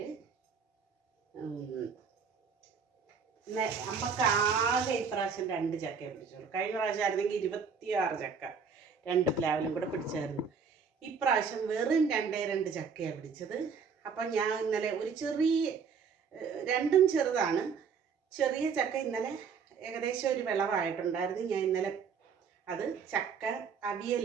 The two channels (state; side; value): quieter; left; 5.9 dB